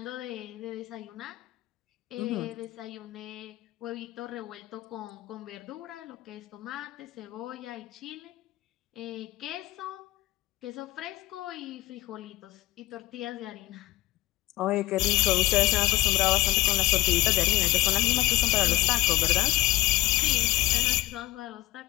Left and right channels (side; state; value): right; quieter; 18.7 dB